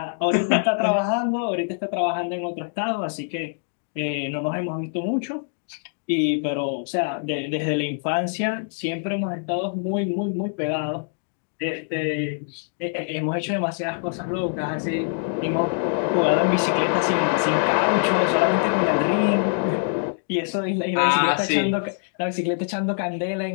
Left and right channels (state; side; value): silent; right; digital silence